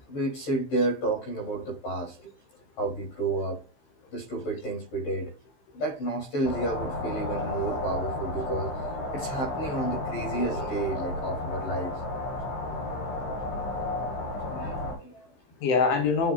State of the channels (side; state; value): right; late; 15 ms